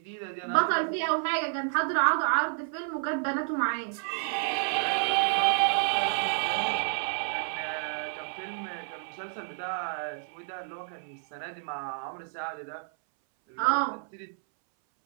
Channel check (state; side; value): silent; left; 58 dB below the other